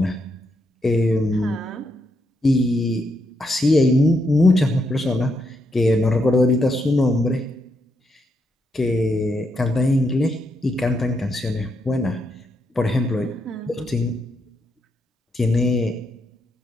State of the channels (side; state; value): both; normal; correlation 0.80